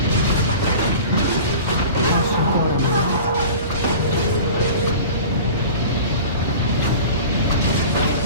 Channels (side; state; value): both; inverted; correlation -0.39